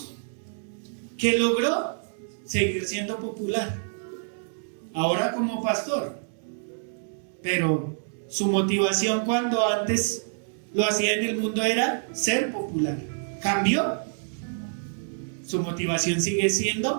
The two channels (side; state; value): left; silent; digital silence